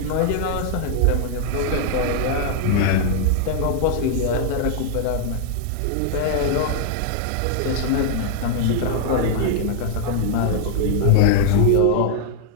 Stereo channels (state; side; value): different; both; correlation -0.01